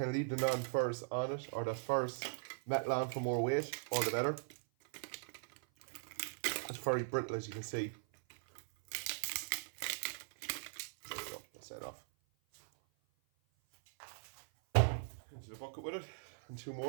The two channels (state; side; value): silent; left; 51 dB below the other